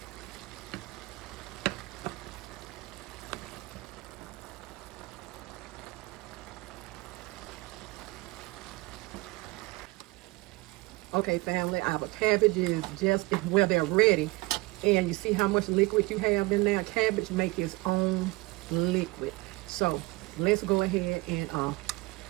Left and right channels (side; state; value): left; quieter; 22.8 dB